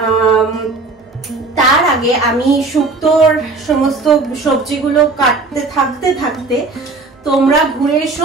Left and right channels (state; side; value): quieter; left; 3.7 dB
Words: তার আগে আমি শুক্তোর সমস্ত সবজিগুলো কাটতে থাকতে তোমরা ঘুরে এসো